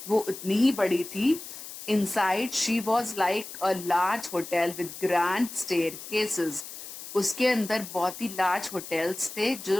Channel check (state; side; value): noise; left; hiss, 12 dB below the sound